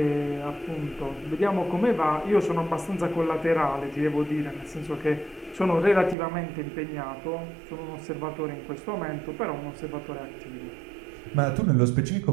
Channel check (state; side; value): drops out; left; at 6.2 s